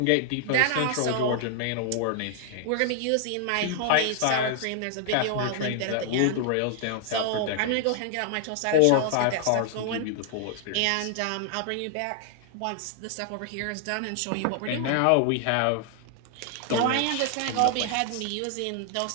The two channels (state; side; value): different; both; correlation 0.00